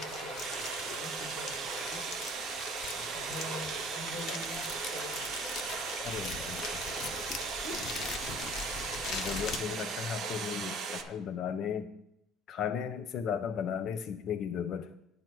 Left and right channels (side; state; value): both; normal; correlation 0.50